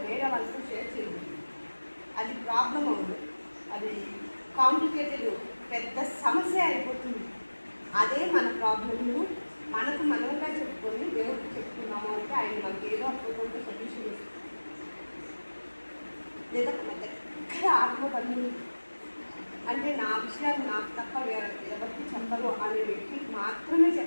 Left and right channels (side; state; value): both; inverted; correlation -1.00